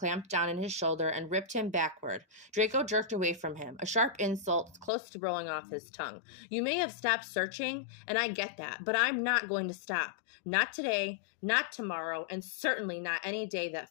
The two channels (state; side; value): drops out; right; at 4.9 s